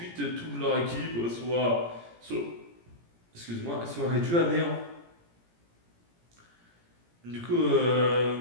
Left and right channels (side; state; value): left; late; 17 ms